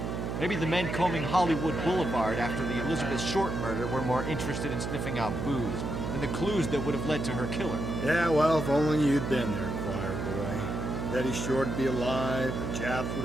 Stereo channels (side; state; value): right; noise; hum, 3 dB below the sound